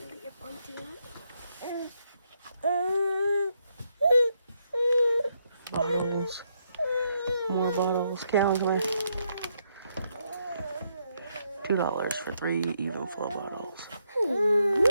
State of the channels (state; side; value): inverted; both; correlation -0.78